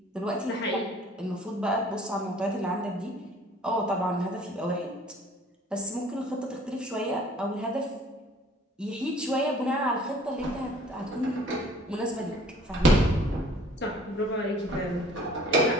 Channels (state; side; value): normal; both; correlation 0.53